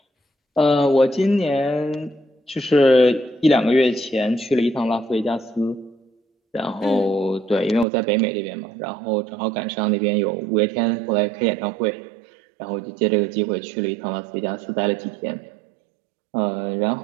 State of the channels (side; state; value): left; drops out; at 7.9 s